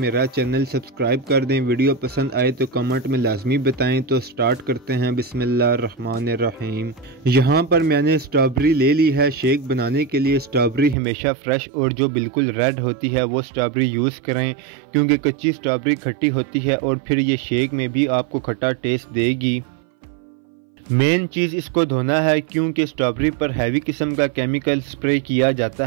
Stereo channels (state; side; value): drops out; left; at 11.0 s